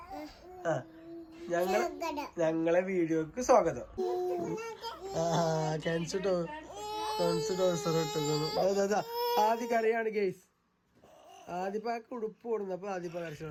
ഞങ്ങളെ വീഡിയോക്ക് സ്വാഗതം. ആദ്യ കരയാണ് ഗെയ്സ്. ആദ്യപ്പാക്ക് ഉടുപ്പ് കൊടുന്നപ്പോ ആദ്യപ്പ കരച്ചു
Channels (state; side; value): identical; both; correlation 1.00